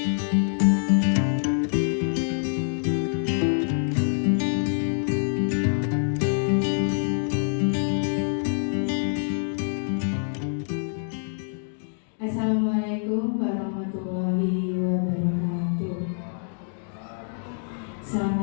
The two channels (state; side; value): silent; right; digital silence